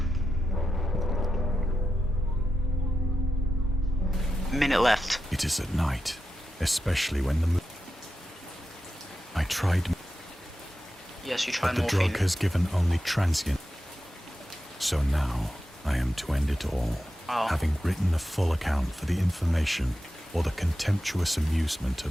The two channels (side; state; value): both; normal; correlation 0.90